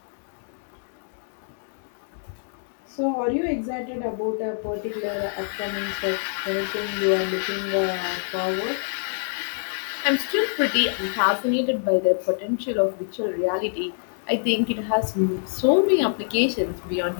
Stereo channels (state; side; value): silent; right; digital silence